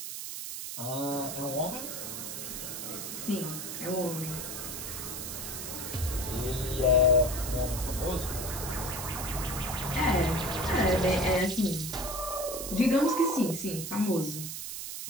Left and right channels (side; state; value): right; noise; hiss, 6 dB below the sound